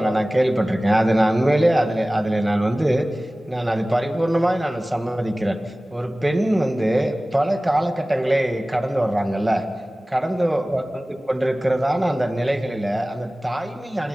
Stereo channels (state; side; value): normal; both; correlation 0.98